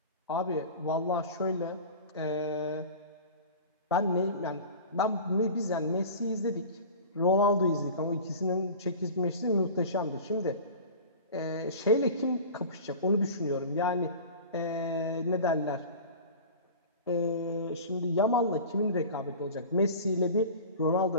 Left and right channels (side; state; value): both; inverted; correlation -0.37